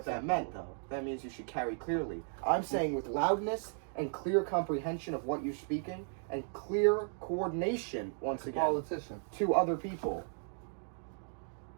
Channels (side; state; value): left; silent; 54 dB below the other